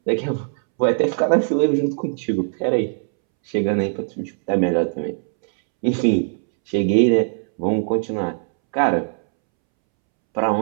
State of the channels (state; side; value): silent; left; 65 dB below the other